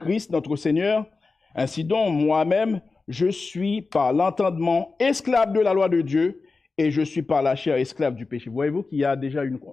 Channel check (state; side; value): quieter; right; 4.0 dB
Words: notre Seigneur. Ainsi donc, moi-même, je suis par l'entendement esclave de la loi de Dieu et je suis par la chair esclave du péché. Voyez-vous qu'il y a déjà